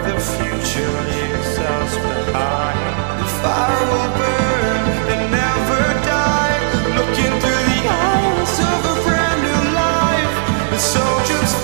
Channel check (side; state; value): left; silent; digital silence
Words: future leaves us behind. The fire will burn and never die, looking through the eyes of a brand new life. And so just